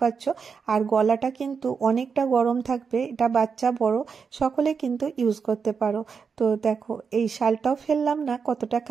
আর গলাটা কিন্তু অনেকটা গরম থাকবে, এটা বাচ্চা বড় সকলে কিন্তু ইউজ করতে পারো। তো তো দেখো এই শালটাও ফেললাম না, কতটা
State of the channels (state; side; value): quieter; left; 5.8 dB